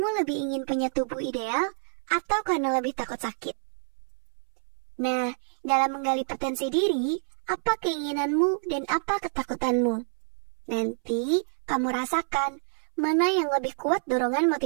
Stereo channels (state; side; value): silent; left; 60 dB below the other